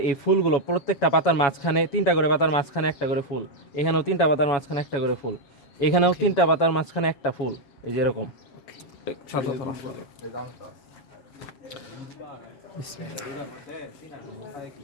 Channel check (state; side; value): late; right; 7.2 ms